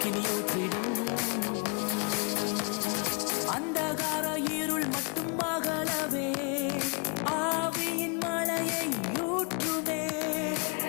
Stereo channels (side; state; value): right; quieter; 35.2 dB